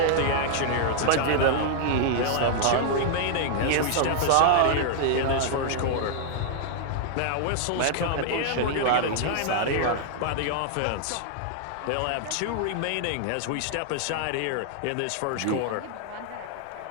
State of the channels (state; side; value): different; both; correlation -0.01